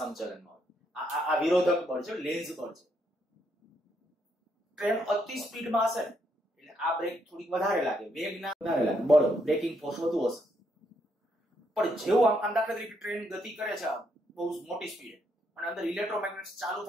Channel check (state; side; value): normal; both; correlation 0.75